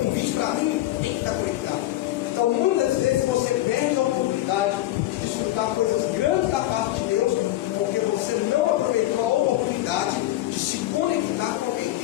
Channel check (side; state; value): right; quieter; 15.4 dB